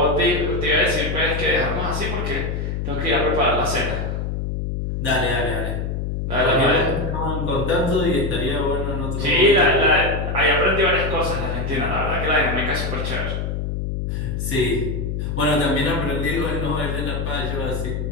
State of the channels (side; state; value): left; noise; hum, 2 dB below the sound